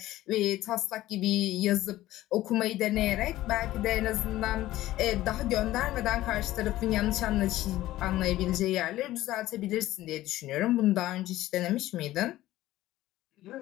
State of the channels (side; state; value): right; quieter; 15.4 dB